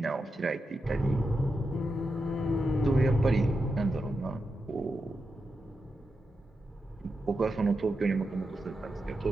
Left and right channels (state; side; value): normal; both; correlation 0.88